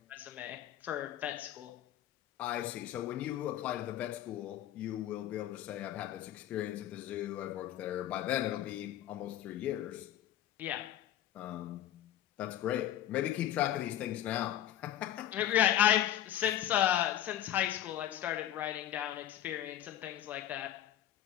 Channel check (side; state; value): right; quieter; 11.9 dB